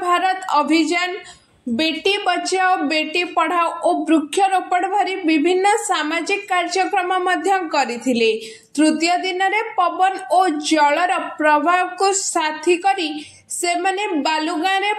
अभियान, बेटी बचाओ बेटी पढ़ाओ और वृक्षरोपण भरी विभिन्न सामाजिक कार्यक्रम मध्य करिथिले। तृतीय दिन में पवन और जलर प्रभाव को साथी करी से माने बालुगाँ रे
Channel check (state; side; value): identical; both; correlation 1.00